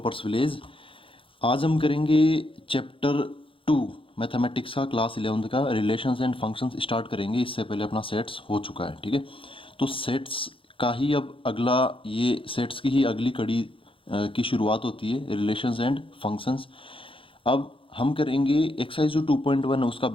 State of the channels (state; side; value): late; right; 0.26 ms